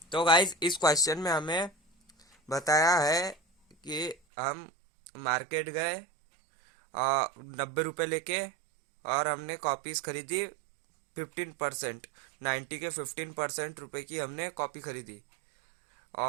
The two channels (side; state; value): left; drops out; at 4.2 s